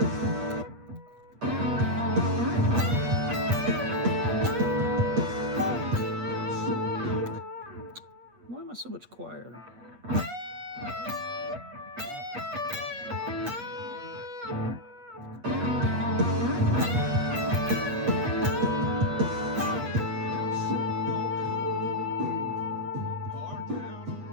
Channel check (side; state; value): left; late; 8.3 ms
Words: Why am I so much quieter?